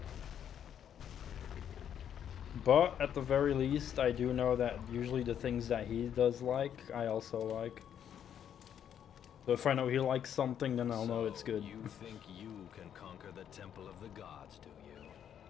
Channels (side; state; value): right; quieter; 9.2 dB